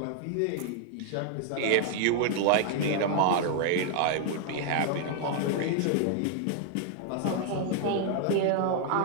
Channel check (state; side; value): different; both; correlation 0.00